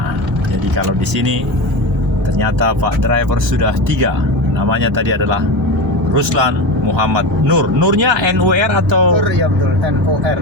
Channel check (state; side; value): normal; both; correlation 0.22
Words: jadi kalau di sini ternyata Pak driver sudah 3. Namanya tadi adalah Ruslan Muhammad Nur. Nurnya NUR atau? Nur, ya betul, NUR.